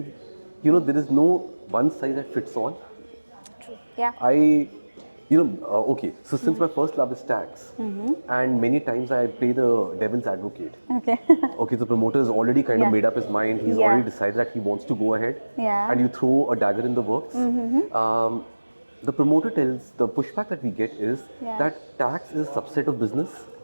there is no one size that fits all. Yeah. Okay, so since my first love is tax, and many times I play the devil's advocate. Okay. Okay, the promoter has already kind of made up his mind. He's already decided that he wants to go ahead, and you throw a dagger in the works. The promoter tells, the pushback that we get is that tax is a subset of business.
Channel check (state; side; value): inverted; both; correlation -1.00